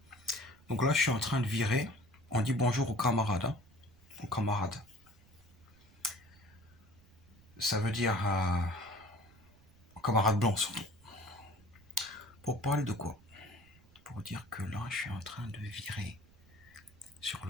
Donc là, je suis en train de virer. On dit bonjour aux camarades. Aux camarades. Ça veut dire aux camarades blancs surtout. Pour parler de quoi? Pour dire que là, je suis en train de virer sur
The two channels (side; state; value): right; noise; rumble, 26 dB below the sound